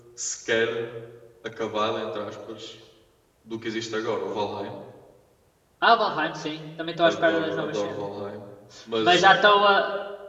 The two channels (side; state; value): both; identical; correlation 1.00